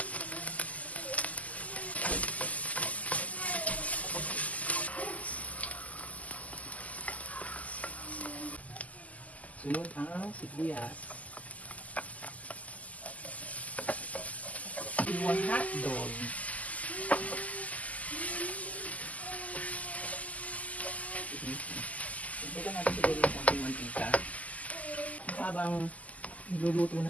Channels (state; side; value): late; right; 0.074 ms